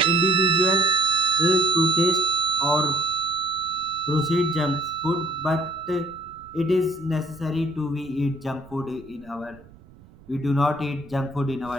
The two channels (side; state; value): right; noise; rumble, 24 dB below the sound